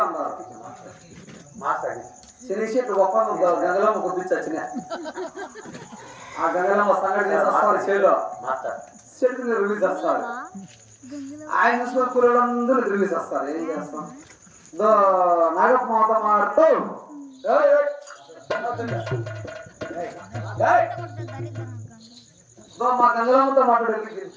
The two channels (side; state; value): both; identical; correlation 1.00